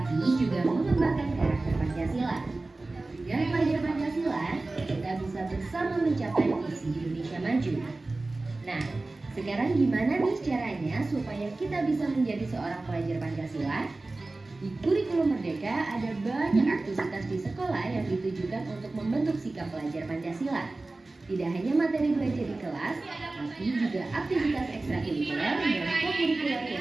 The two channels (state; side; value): quieter; left; 3.2 dB